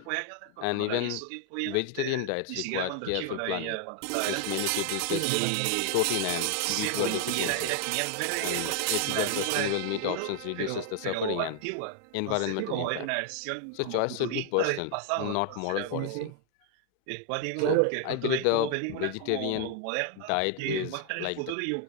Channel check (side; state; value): both; different; correlation 0.00